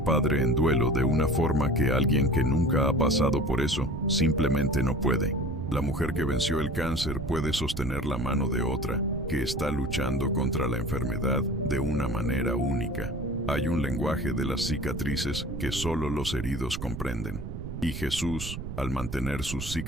padre en duelo de una forma que alguien que nunca ha pasado por eso simplemente no puede. La mujer que venció el cáncer puede sostener la mano de otra que está luchando contra la enfermedad de una manera única. Hay un lenguaje de las cicatrices que solo los heridos comprenden. Y Jesús, al mantener sus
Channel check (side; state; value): right; noise; rumble, 7 dB below the sound